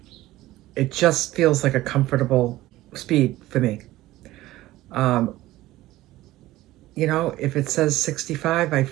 it just feels like a comfortable speed for me. If it says 65, I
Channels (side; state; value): left; quieter; 16.6 dB